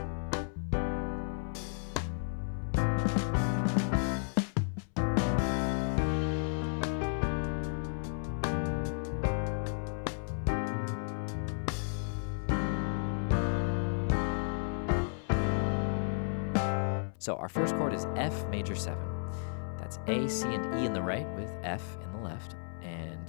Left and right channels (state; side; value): silent; right; 56 dB below the other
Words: So our first chord is F major 7. That's A, C, and E in the right with F in the left.